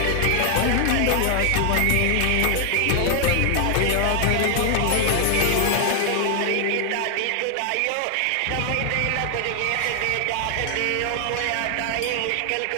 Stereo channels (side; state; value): both; different; correlation 0.00